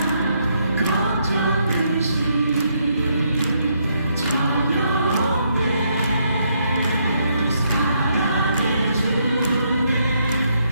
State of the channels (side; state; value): both; inverted; correlation -0.75